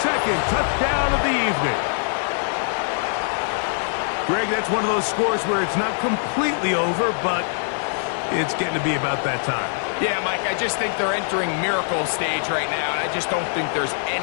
second touchdown of the evening. Greg, that's one of those scores where it's not completely over, but it's getting to be about that time. Yeah, Mike, I just think they're entering miracle stage right now, and I just don't think there's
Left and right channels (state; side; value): silent; right; digital silence